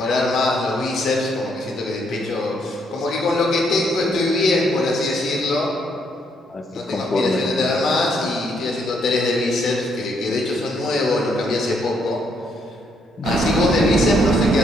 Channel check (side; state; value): both; normal; correlation 0.73